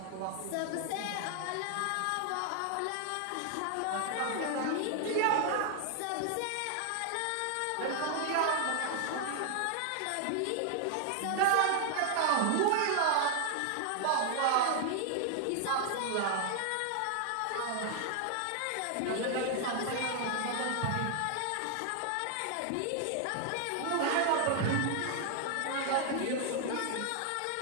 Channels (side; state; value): both; different; correlation 0.00